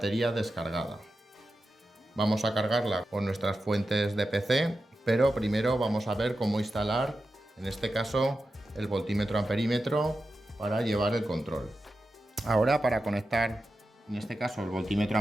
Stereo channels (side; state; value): both; normal; correlation 0.91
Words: descargada. Vamos a cargarla con nuestras fuentes de PC, pero primero vamos a ver cómo instalar, en este caso, el voltímetro amperímetro para llevar el control. Ahora, para conectar, en este caso, el voltímetro